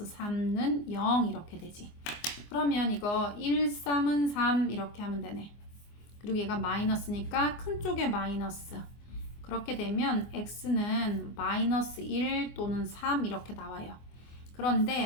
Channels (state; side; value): late; right; 24 ms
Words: 3는 0 이렇게 되지. 그러면 이거 1, 3은 3 이렇게 하면 되네. 그리고 얘가 마이너스니까 큰 쪽에 마이너스. 그렇게 되면 x는 마이너스 1 또는 3 이렇게 나와요.